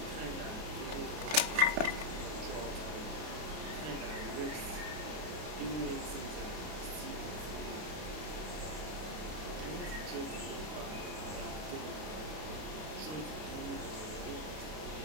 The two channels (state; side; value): late; left; 32 ms